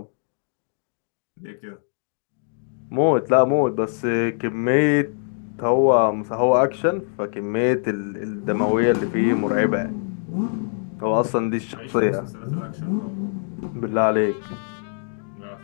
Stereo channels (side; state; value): right; silent; digital silence